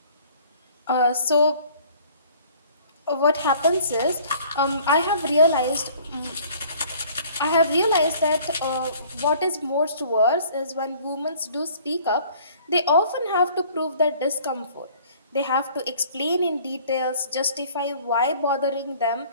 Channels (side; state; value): both; inverted; correlation -0.53